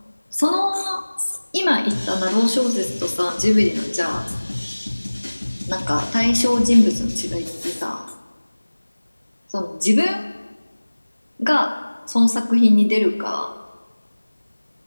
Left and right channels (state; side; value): inverted; both; correlation -1.00